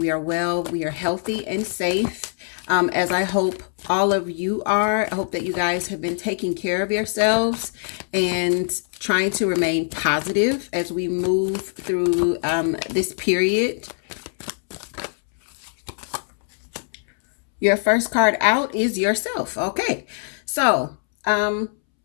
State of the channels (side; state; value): right; silent; 64 dB below the other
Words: are well. We are healthy and safe, as I hope all of you are. I hope that you guys have been taking care of yourselves and trying to remain positive as we move through this period. Your first card out is yourself. Okay, so